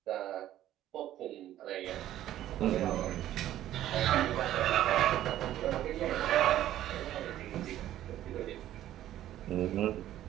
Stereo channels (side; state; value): left; quieter; 12.8 dB